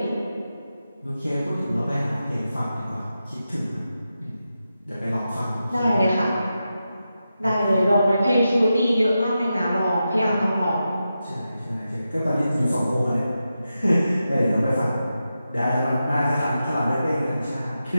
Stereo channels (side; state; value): both; inverted; correlation -0.90